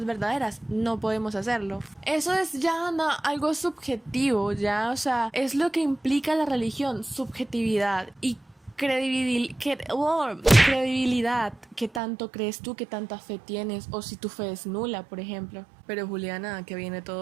verdaderas. No podemos hacerlo. Eso es ya algo subjetivo, ya, o sea, es lo que implica la religión, subjetividad y credibilidad. ¿Qué tanto crees tú? ¿Qué tanta fe tienes? O si tu fe es nula, por ejemplo. Pero Juliana, ¿a qué viene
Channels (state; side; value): drops out; left; at 12.0 s